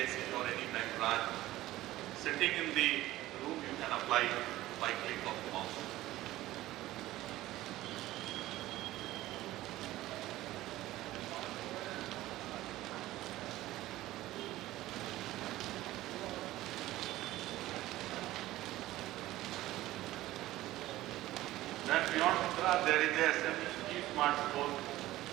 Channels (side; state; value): left; quieter; 16.1 dB